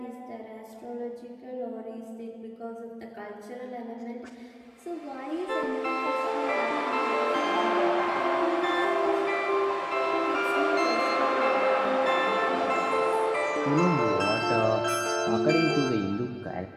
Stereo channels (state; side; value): identical; both; correlation 1.00